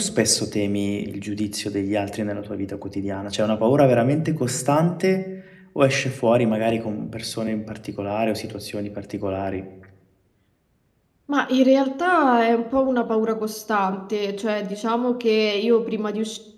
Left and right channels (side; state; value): both; identical; correlation 1.00